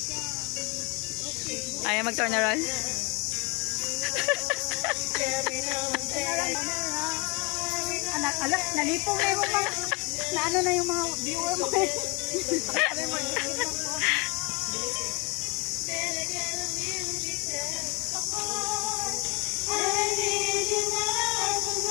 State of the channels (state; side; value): quieter; right; 29.0 dB